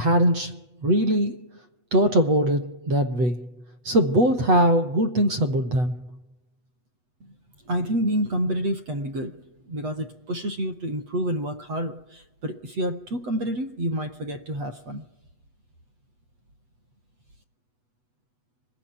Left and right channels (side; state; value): left; late; 8.1 ms